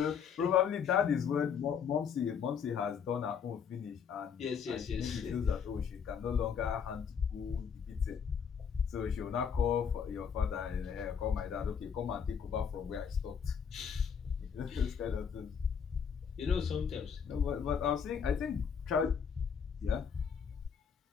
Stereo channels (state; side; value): quieter; right; 7.0 dB